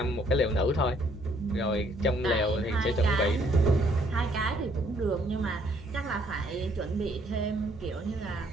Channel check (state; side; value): normal; both; correlation 0.66